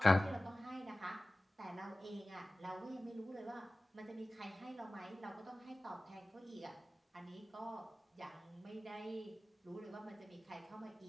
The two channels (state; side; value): normal; both; correlation 0.97